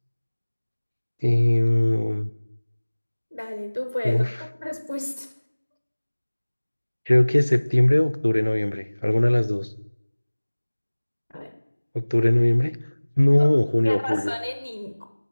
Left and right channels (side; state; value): both; inverted; correlation -1.00